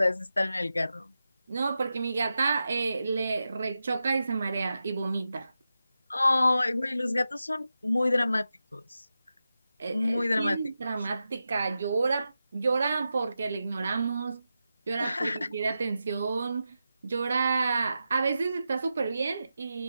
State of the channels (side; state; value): both; inverted; correlation -0.90